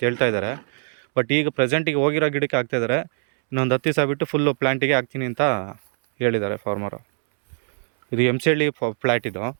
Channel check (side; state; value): left; silent; 64 dB below the other